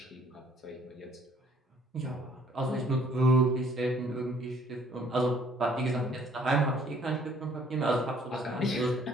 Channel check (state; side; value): normal; both; correlation 0.60